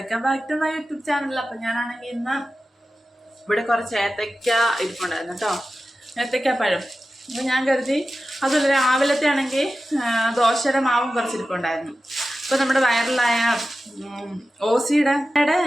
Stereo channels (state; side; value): normal; both; correlation 0.94